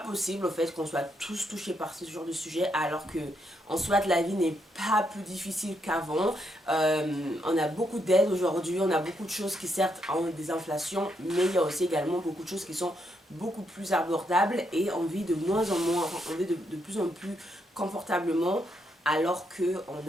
au fait qu'on soit tous touchés par ce genre de sujet, alors que en soit la vie n'est pas plus difficile qu'avant. On a beaucoup d'aides aujourd'hui, on a beaucoup de choses qui certes ont des inflations, mais il y a aussi également beaucoup de choses qui sont beaucoup plus abordables et on vit de moins en moins, on vit de plus en plus confortablement, alors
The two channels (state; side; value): normal; both; correlation 0.78